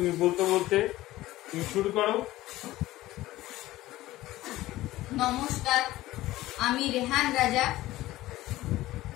বলতে বলতে তুমি শুরু করো। নমস্কার, আমি রেহান রাজা।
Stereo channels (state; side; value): quieter; right; 16.6 dB